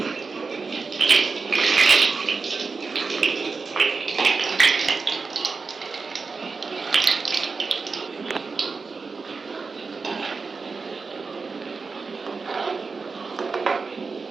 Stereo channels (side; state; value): left; quieter; 4.5 dB